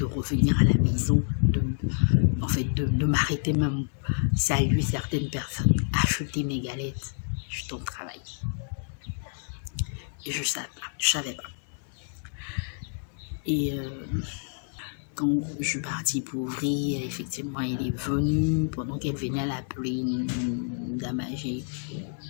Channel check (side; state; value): right; silent; digital silence